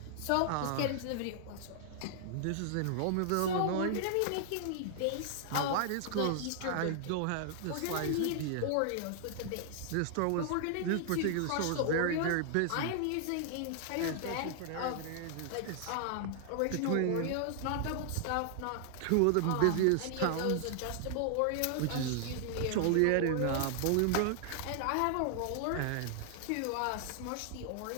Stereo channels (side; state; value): both; different; correlation 0.00